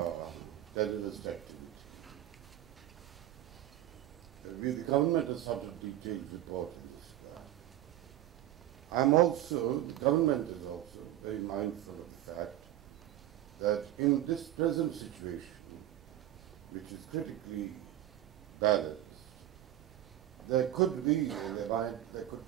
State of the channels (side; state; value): left; quieter; 13.3 dB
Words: terrorist activity. The government has sought a detailed report in this regard. The government is also very mindful of the fact that in this present situation, which is critically balanced, there could